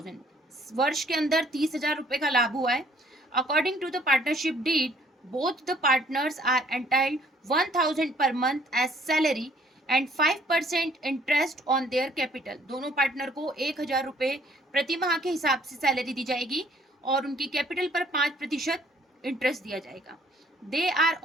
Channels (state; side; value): normal; both; correlation 0.61